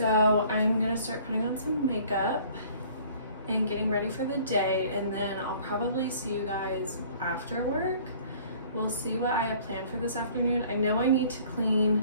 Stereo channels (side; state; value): both; inverted; correlation -0.53